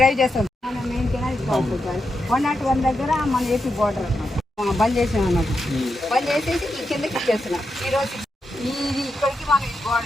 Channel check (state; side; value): normal; both; correlation 0.86